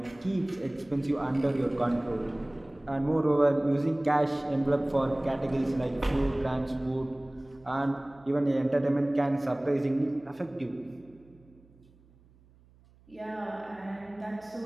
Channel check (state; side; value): noise; right; hum, 28 dB below the sound